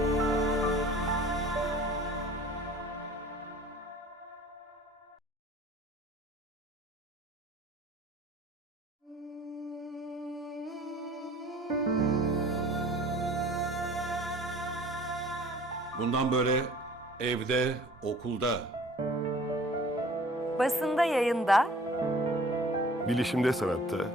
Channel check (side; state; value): both; normal; correlation 0.49